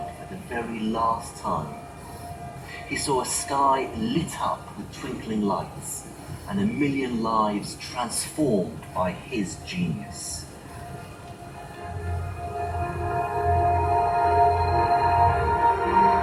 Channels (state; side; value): identical; both; correlation 1.00